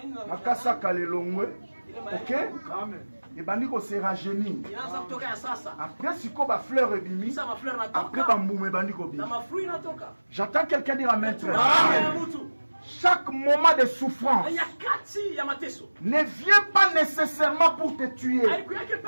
Makase akalelongwe. Ok? Ebandi se rajeunir. Après siko ba fleur ebimi. Après ba mbuma ebandi kobima. J'attends quelqu'un dire Amen. Chaque moment de souffrance ne vient pas nécessairement pour te tuer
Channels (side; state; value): both; inverted; correlation -1.00